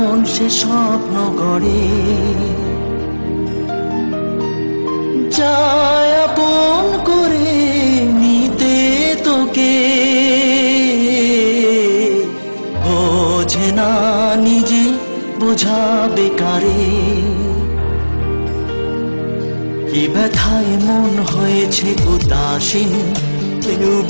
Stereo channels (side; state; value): both; inverted; correlation -1.00